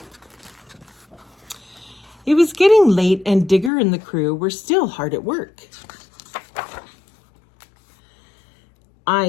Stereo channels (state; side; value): drops out; right; at 3.7 s